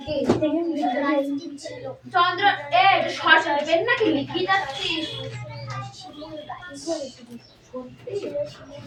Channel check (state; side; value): identical; both; correlation 1.00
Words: চন্দ্র এ সরস্বতী পেন নাকি লিখি যাচ্ছিস?